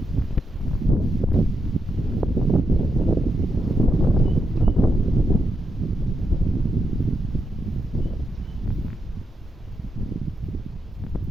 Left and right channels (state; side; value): normal; both; correlation 0.84